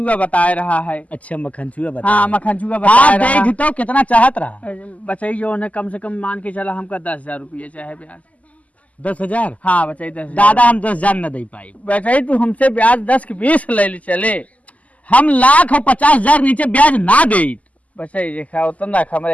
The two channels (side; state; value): right; late; 0.072 ms